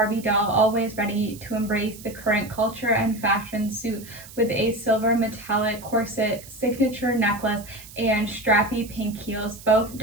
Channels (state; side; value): noise; right; hiss, 18 dB below the sound